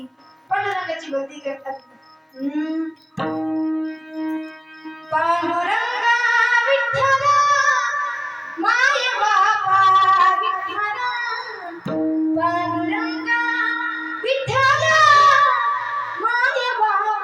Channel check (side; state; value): both; identical; correlation 1.00